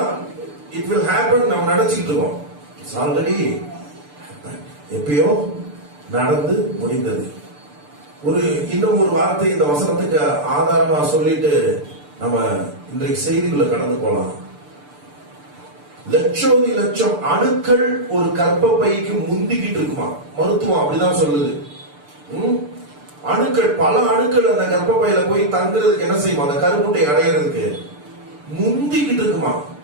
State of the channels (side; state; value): left; late; 6.8 ms